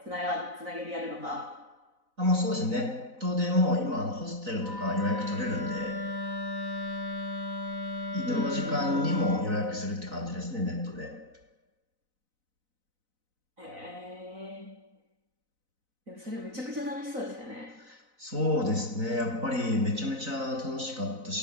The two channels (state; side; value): late; left; 4.0 ms